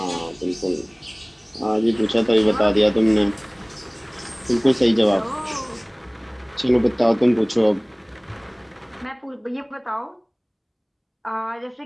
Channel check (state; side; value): identical; both; correlation 1.00